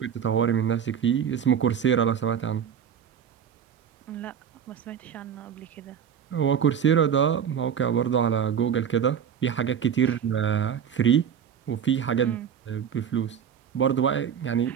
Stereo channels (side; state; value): left; quieter; 8.1 dB